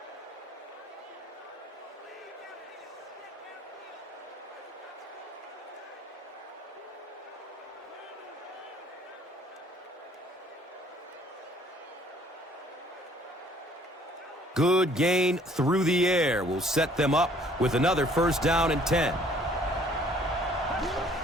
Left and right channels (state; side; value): normal; both; correlation 0.58